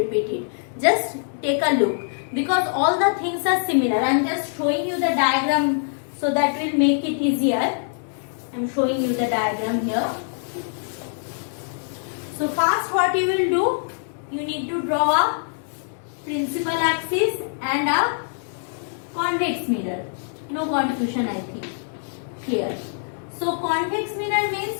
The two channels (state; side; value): silent; right; digital silence